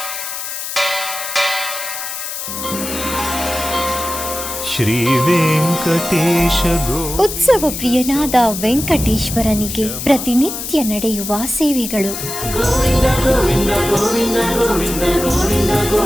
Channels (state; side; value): noise; left; hiss, 6 dB below the sound